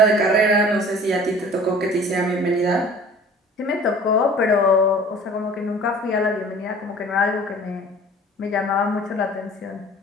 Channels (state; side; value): normal; both; correlation 0.46